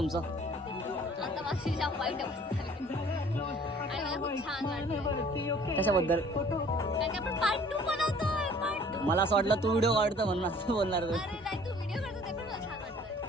आता माझी जाम वाईट अवस्था झाली आणि मला खूप छान वाटतं. कशाबद्दल. कारण की आपण पार्ट 2 बनवतोय. पार्ट 2. मला असं वाटलं तू व्हिडिओ काढतो म्हणून असं बोलणार तू. अरे नाही, तू व्हिडिओ करतो ते पण मला छान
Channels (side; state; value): both; normal; correlation 0.52